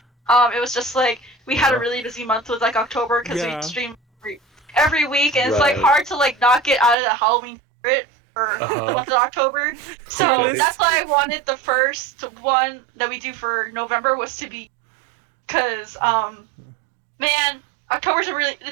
It was just like we had a really busy month with like October because we stream every week, and it's like hard to like not get out of the Halloween spirit for the month of October. So that's why I wanted the first one that we do for November was to be, because man, Octobers are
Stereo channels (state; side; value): drops out; left; at 7.0 s